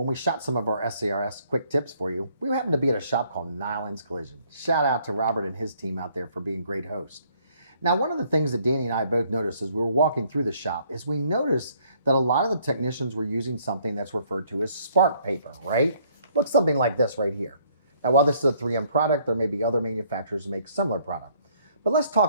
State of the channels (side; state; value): both; inverted; correlation -0.64